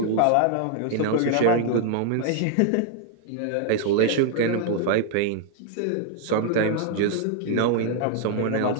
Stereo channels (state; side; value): different; both; correlation 0.00